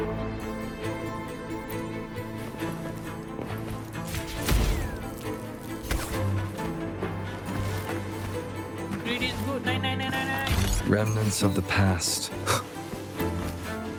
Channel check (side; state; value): both; identical; correlation 1.00